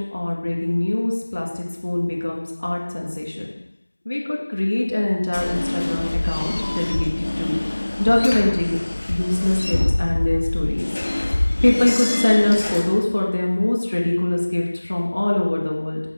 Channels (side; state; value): both; inverted; correlation -1.00